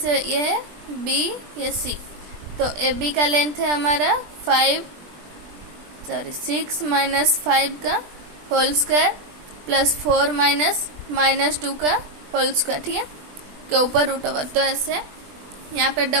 ये है बी, ये सी। तो ए बी का लेंथ है हमारा 6 - 5 का होल स्क्वायर प्लस 4 - -2 का होल स्क्वायर, ठीक है, के ऊपर √। तो ऐसे यहाँ पे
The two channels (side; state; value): left; late; 20 ms